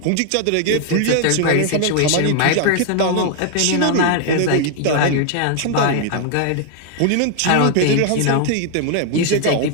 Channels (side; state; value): both; different; correlation 0.00